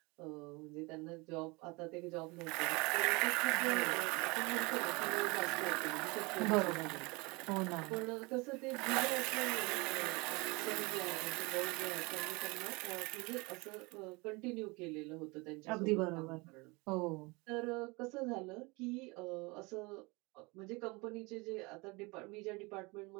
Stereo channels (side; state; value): left; quieter; 26.1 dB